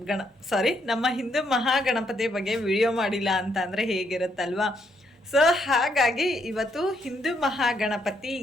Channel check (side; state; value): both; normal; correlation 0.74